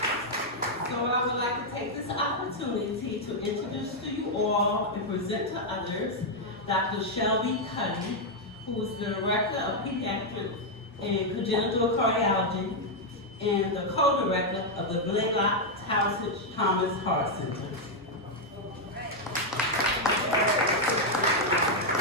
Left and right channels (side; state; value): both; normal; correlation -0.01